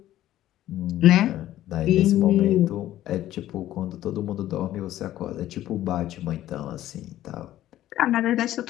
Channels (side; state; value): right; quieter; 13.6 dB